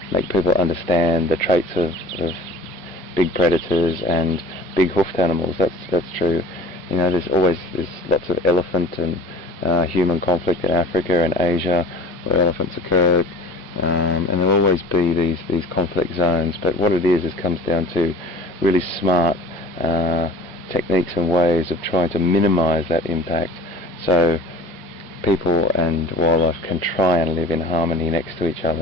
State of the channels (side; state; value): both; normal; correlation 0.42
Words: make people understand the traits of big predators and big hoofed animals. That's true. There's lots of elephant and human conflict in Africa and Asia where elephants occurred, and there'll always be these conflict zones. But what it is comes down to really smart techniques and ways of trying to minimize that impact, so people and wildlife can try and live in harmony next to each